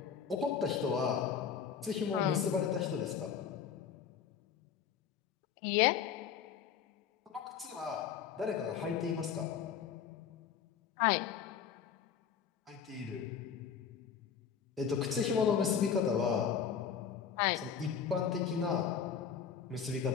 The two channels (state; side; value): quieter; right; 7.4 dB